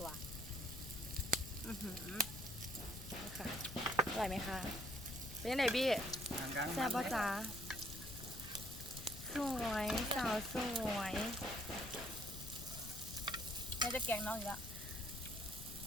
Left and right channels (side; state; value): left; noise; rumble, 11 dB below the sound